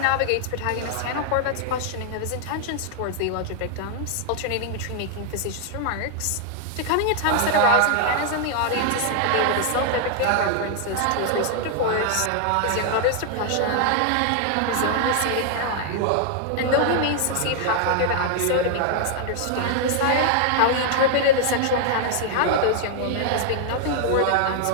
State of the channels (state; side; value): different; both; correlation 0.00